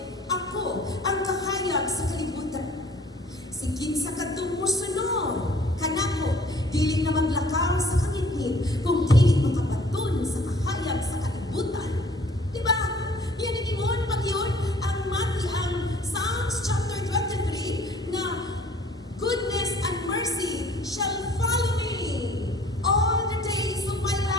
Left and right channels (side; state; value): both; normal; correlation 0.54